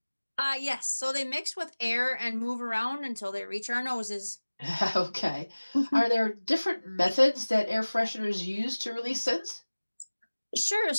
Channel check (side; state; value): both; inverted; correlation -1.00